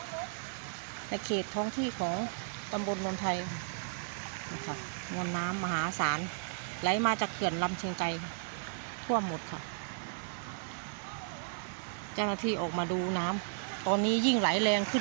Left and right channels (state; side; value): silent; left; 55 dB below the other